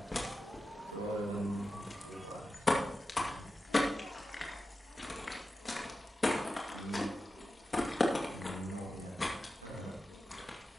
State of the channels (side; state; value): both; normal; correlation 0.92